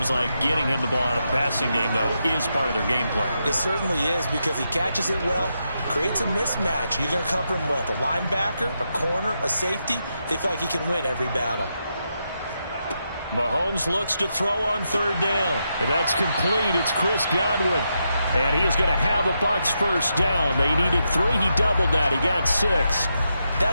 like getting him the ball out of the passing game, though, is part of their game plan. It certainly is because he catches it well, creates a mismatch. You're going to cover him with a linebacker, a corner, a safety. They feel like he can win every battle. Mahomes looks to throw on third down. And that's complete. It's Chris Godwin. And he is going to have a Bucs first down. They needed 3. He doubled that. He got 6.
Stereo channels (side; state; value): both; inverted; correlation -0.84